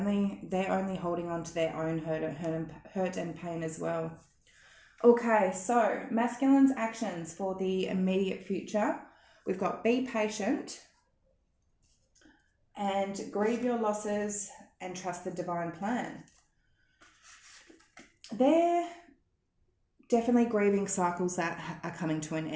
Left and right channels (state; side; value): identical; both; correlation 1.00